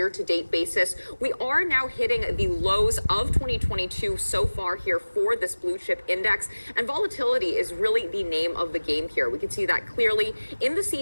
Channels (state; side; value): inverted; both; correlation -1.00